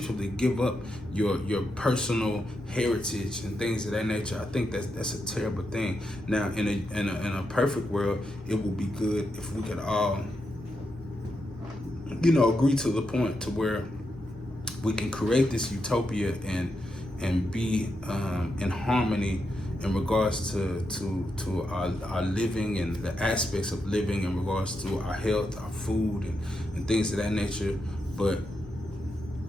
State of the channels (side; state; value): both; normal; correlation 0.85